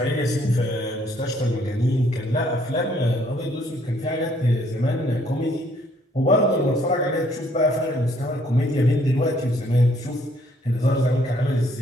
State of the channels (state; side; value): normal; both; correlation 0.65